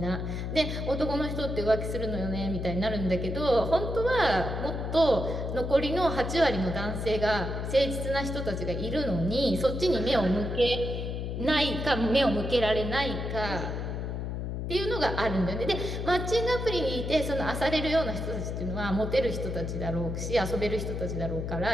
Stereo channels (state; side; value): noise; left; hum, 4 dB below the sound